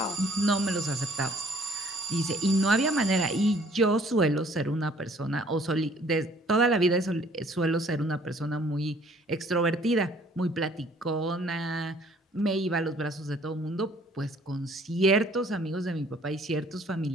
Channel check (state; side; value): normal; both; correlation 0.58